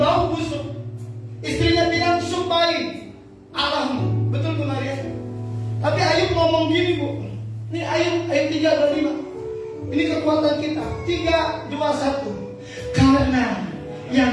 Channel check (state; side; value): identical; both; correlation 1.00